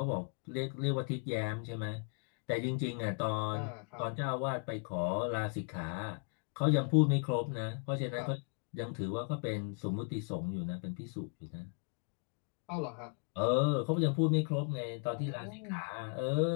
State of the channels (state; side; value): quieter; right; 37.4 dB